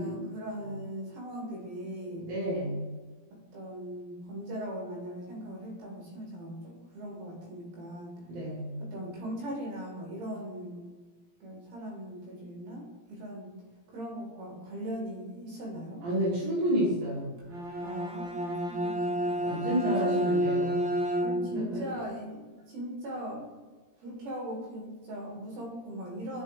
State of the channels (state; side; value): late; left; 17 ms